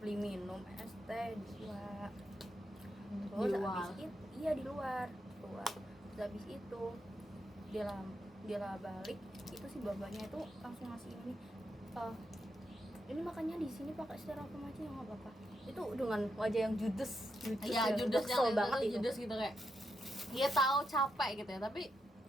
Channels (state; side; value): normal; both; correlation 0.83